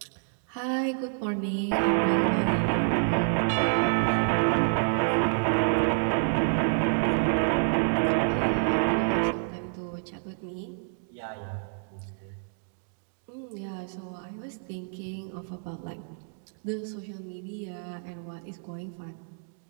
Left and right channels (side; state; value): left; silent; 58 dB below the other